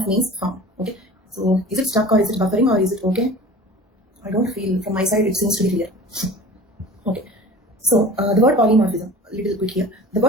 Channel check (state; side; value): normal; both; correlation 0.41